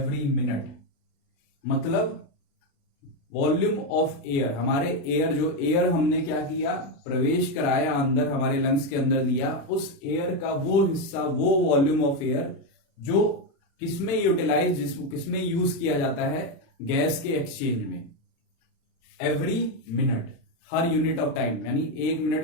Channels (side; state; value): right; late; 35 ms